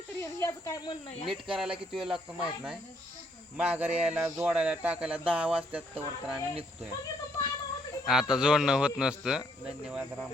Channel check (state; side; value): normal; both; correlation 0.70